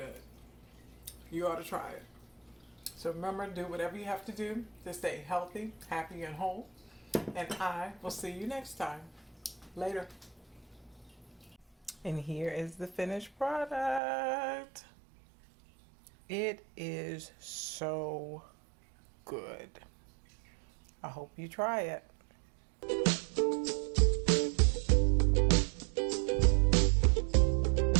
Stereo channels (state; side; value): drops out; left; at 14.0 s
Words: You ought to try it. So remember, do whatever you have to do to stay healthy, happy, and whole. And I will see you next time. Later. And here is the finished product. It is so good. I hope you try it.